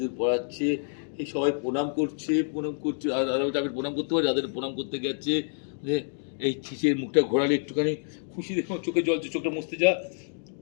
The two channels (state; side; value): silent; right; digital silence